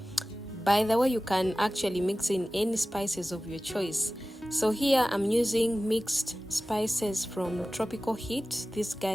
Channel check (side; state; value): both; normal; correlation 0.96